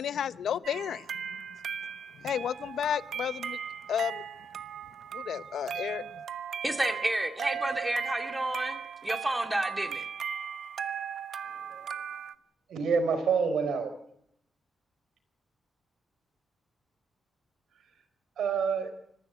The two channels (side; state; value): both; normal; correlation 0.77